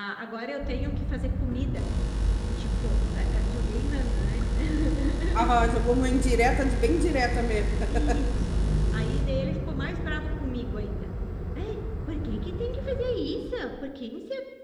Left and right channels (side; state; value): both; identical; correlation 1.00